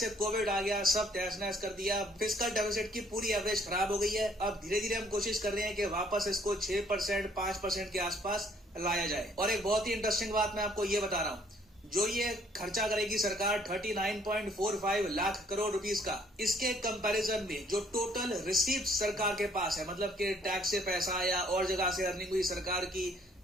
कोविड आ गया, सब तहस नहस कर दिया, फिस्कल डेफिसिट की पूरी एवरेज खराब हो गई है। अब धीरे धीरे हम कोशिश कर रहे हैं कि वापस इसको 6% 5% के आसपास लाया जाए। और एक बहुत ही इंटरेस्टिंग बात मैं आपको ये बता रहा हूँ, जो ये खर्चा करेगी सरकार 39.45 लाख करोड़ रुपीस का, इसके कंपैरिजन में जो टोटल रिसीव्ड सरकार के पास है, मतलब कि टैक्स से पैसा या और जगह से अर्निंग हुई सरकार की,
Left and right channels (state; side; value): normal; both; correlation 0.63